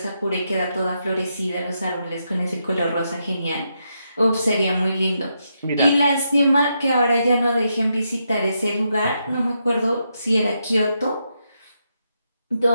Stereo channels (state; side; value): inverted; both; correlation -0.82